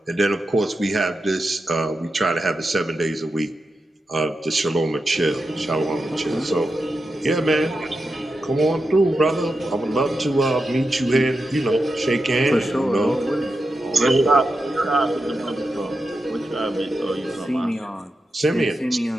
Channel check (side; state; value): both; normal; correlation 0.89